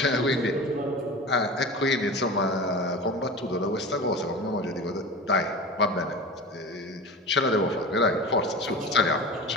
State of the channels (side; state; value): both; normal; correlation 0.32